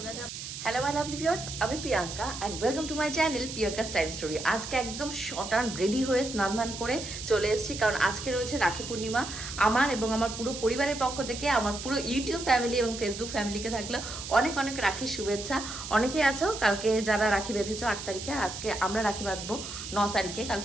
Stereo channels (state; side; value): noise; right; hiss, 9 dB below the sound